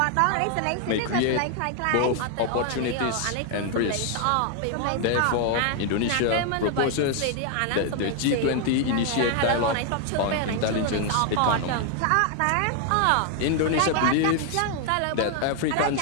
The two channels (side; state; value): both; different; correlation 0.00